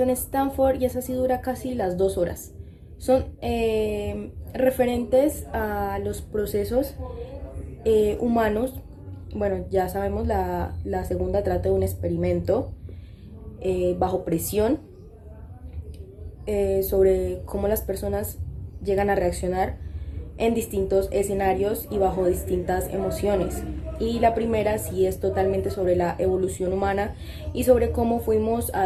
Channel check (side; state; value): both; identical; correlation 1.00